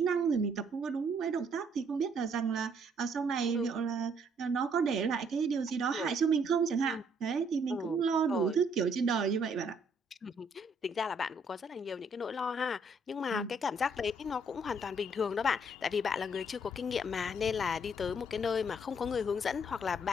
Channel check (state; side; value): normal; both; correlation 0.67